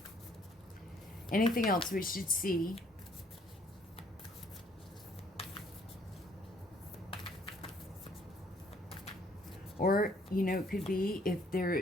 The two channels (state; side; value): normal; both; correlation 0.63